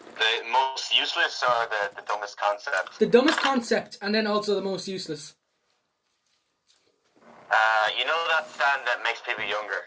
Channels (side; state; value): both; identical; correlation 1.00